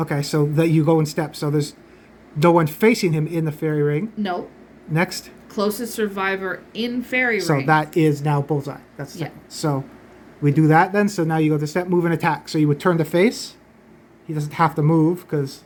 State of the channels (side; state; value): both; identical; correlation 1.00